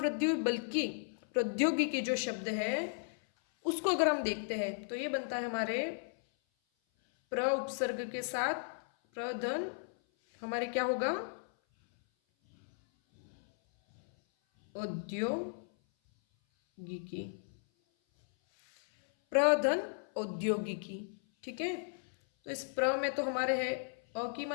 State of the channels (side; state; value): right; silent; 54 dB below the other